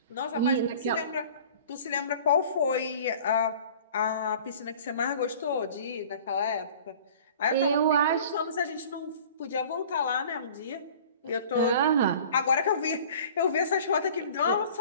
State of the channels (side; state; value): both; inverted; correlation -0.46